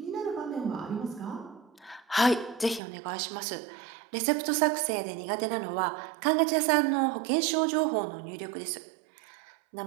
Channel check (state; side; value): drops out; left; at 2.8 s